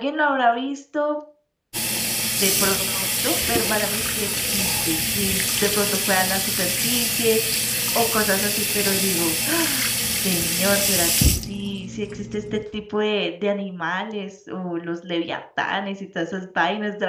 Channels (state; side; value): identical; both; correlation 1.00